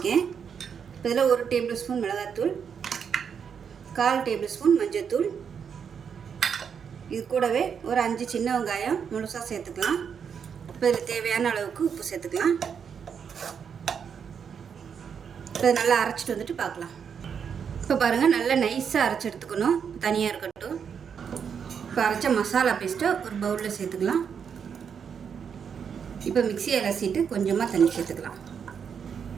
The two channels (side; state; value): left; quieter; 7.1 dB